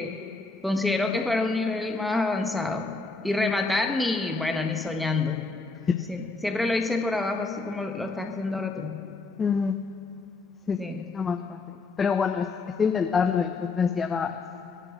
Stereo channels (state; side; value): quieter; right; 3.9 dB